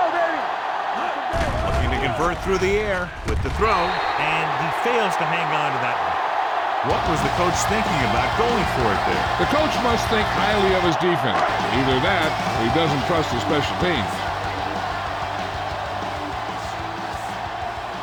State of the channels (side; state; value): both; identical; correlation 1.00